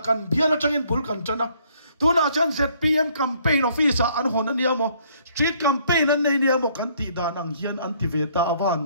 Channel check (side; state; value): both; inverted; correlation -0.64